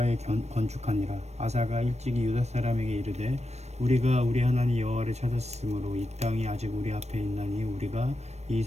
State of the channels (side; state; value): left; late; 0.32 ms